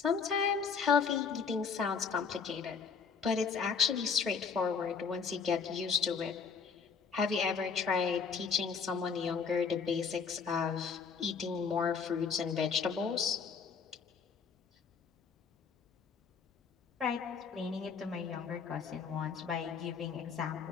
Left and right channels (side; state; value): right; quieter; 5.9 dB